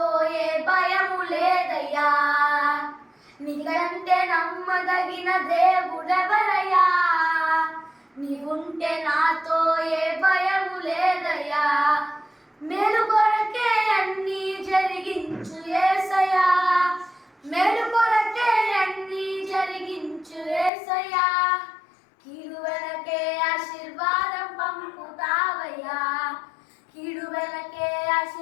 ఏ భయము లేదయ్యా. నీకంటే నమ్మదగిన దేవుడెవరయ్యా, నీవుంటే నాతో ఏ భయము లేదయ్యా. మేలు కొరకే అన్నీ జరిగించు యేసయ్యా, మేలు కొరకే అన్నీ జరిగించు యేసయ్యా. కీడు వెనకే ఆశీర్వాదం పంపుతావయ్యా, కీడు వెనకే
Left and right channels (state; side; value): drops out; right; at 20.7 s